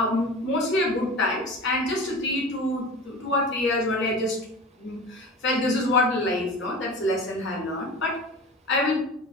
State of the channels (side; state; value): both; normal; correlation 0.35